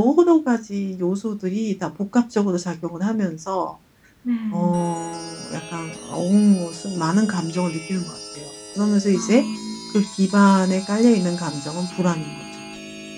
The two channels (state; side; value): identical; both; correlation 1.00